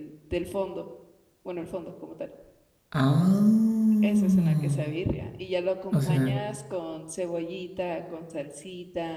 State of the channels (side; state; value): both; identical; correlation 1.00